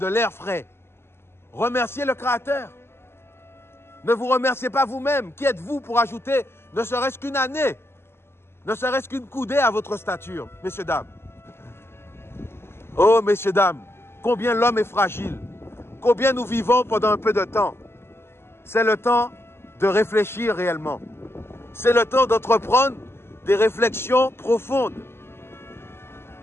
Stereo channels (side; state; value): right; late; 0.12 ms